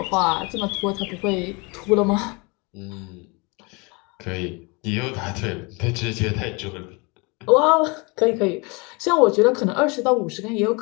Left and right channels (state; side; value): quieter; right; 28.8 dB